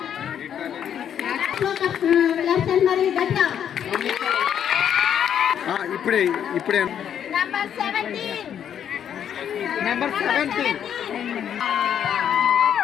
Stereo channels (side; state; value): right; quieter; 9.1 dB